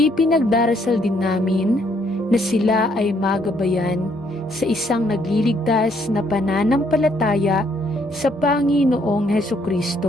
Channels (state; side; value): normal; both; correlation 0.69